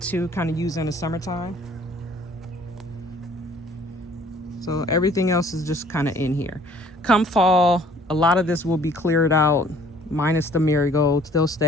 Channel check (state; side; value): normal; both; correlation 0.56